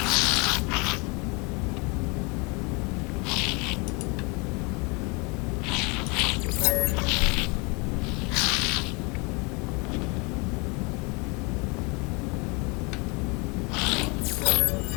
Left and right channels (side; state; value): right; quieter; 29.6 dB